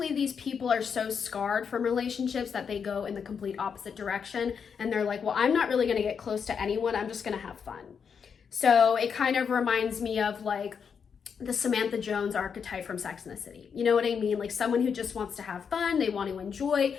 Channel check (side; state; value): right; quieter; 6.6 dB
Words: these people are so scarred from relationships that they go in the complete opposite direction. And they're like, well, I'm not really going to get close to anyone. I'm just going to have fun. So it kind of reminds me of like the Samantha Jones archetype from Sex and the City. You know what I mean? Like someone who just wants to have fun. They want to enjoy